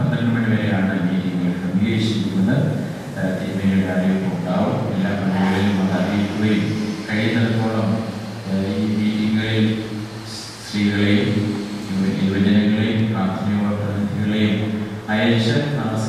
മണി വരെയാണ് മീറ്റിംഗുകൾ ക്രമീകരിച്ചിരിക്കുന്നത്. തിരുമേനിയുടെ അറിയിപ്പ് ഉണ്ടാവും. എല്ലാ പള്ളികളിലും അത് അറിയിക്കുകയും കഴിയുന്നിടത്തോളം ഈ മീറ്റിങ്ങുകളിൽ സ്ത്രീകളെയും യുവജനങ്ങളെയും പ്രാഥമിക പ്രതിനിധികളെയും അയച്ച് ആ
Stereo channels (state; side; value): identical; both; correlation 1.00